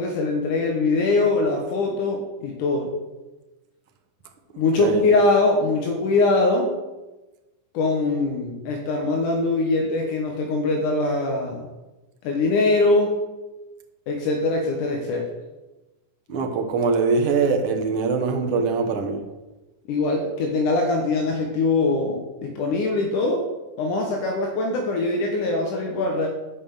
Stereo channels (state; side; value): late; right; 10 ms